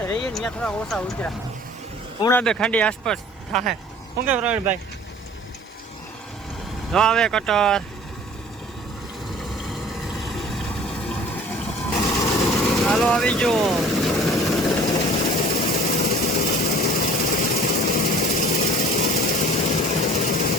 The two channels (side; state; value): both; normal; correlation 0.48